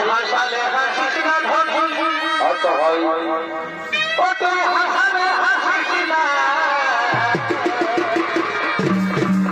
হাসালে হাসিস না ধনি, আচ্ছা হয় তোকে হাসালে হাসিস না।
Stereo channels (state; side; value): identical; both; correlation 1.00